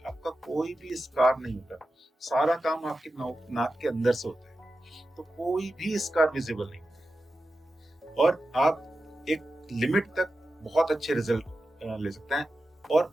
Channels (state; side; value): normal; both; correlation 0.92